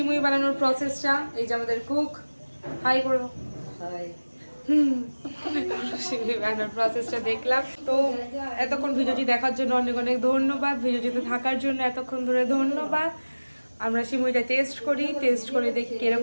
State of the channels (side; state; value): both; inverted; correlation -1.00